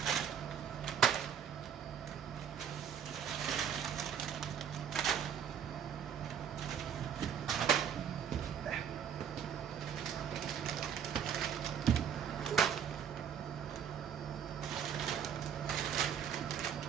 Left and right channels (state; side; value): quieter; left; 8.3 dB